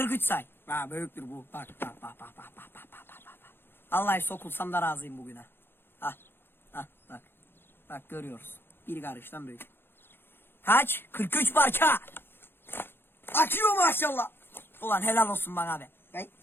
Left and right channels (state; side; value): late; right; 0.10 ms